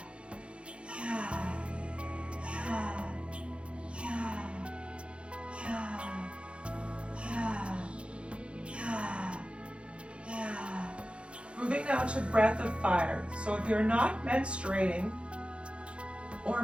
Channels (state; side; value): late; left; 0.058 ms